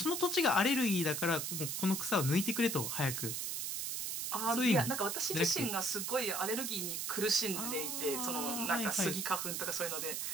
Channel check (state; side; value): noise; right; hiss, 2 dB below the sound